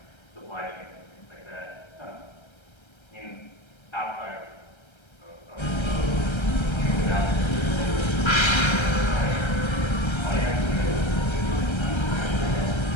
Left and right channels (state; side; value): late; right; 1.3 ms